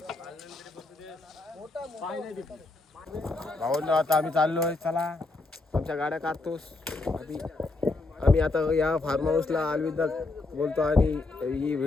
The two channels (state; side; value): quieter; right; 3.3 dB